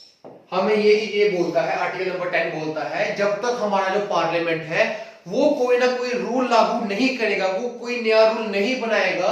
हमें ये बोलता है, आर्टिकल नंबर 10 बोलता है जब तक हमारा जो पार्लियामेंट है वो कोई ना कोई रूल लागू नहीं करेगा, वो कोई नया रूल नहीं बनाएगा,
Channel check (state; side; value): identical; both; correlation 1.00